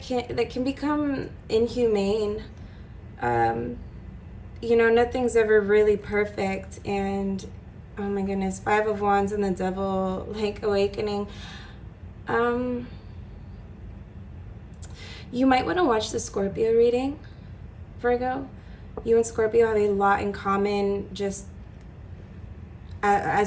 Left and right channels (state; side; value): identical; both; correlation 1.00